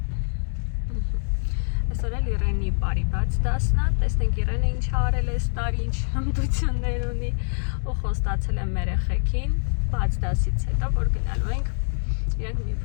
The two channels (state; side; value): silent; right; digital silence